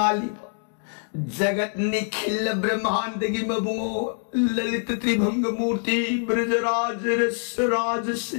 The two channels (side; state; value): right; silent; 62 dB below the other